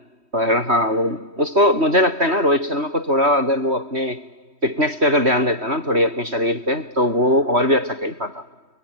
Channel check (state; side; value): late; left; 3.1 ms